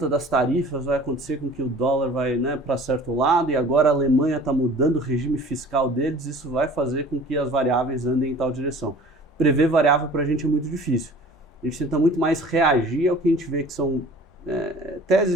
das tarifas vai acontecer com que o dólar vai, né, para certo lado e agora a Alemanha está mudando o regime fiscal deles, isso vai fazer com que as variáveis andem em tal direção. Prever variável para a gente é muito difícil. A gente tenta muito mais reagir ao que a gente vê que são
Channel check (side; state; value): both; normal; correlation 0.46